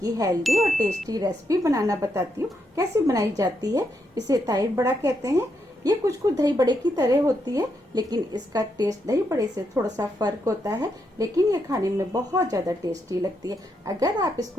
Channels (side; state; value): both; normal; correlation 0.80